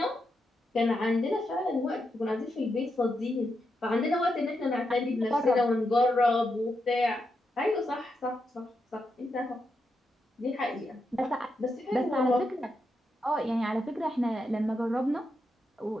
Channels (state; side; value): normal; both; correlation 0.84